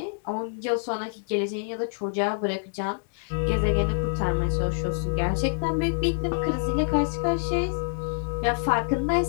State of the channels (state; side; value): silent; right; digital silence